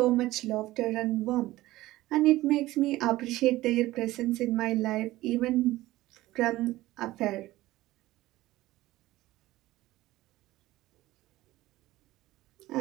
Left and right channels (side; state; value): left; quieter; 17.1 dB